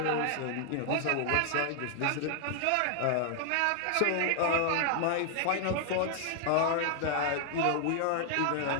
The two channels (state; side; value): different; both; correlation 0.00